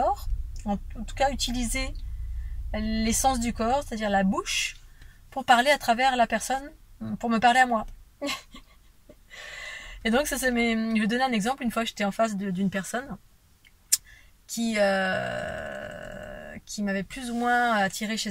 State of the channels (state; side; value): identical; both; correlation 1.00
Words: en tout cas utiliser l'essence du corps, c'est-à-dire la bouche, pour parler à travers la personne pour me parler à moi. Et donc, je vais donner un exemple. Une fois, j'étais en face d'une personne qui m'avait plus ou moins attiré chez